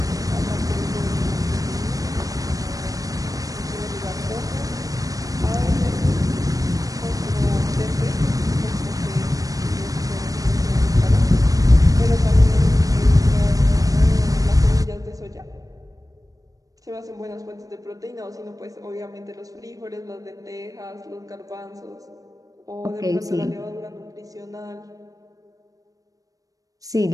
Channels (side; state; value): left; late; 0.17 ms